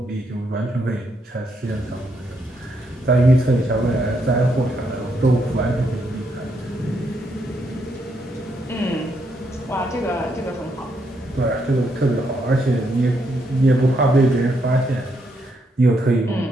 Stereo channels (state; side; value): normal; both; correlation 0.77